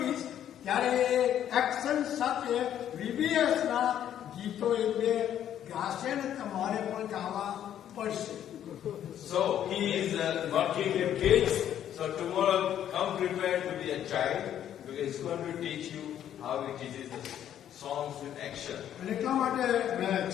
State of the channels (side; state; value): right; quieter; 10.5 dB